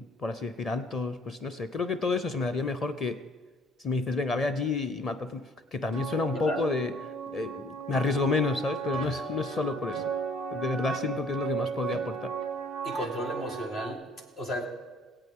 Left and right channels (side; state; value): both; normal; correlation 0.58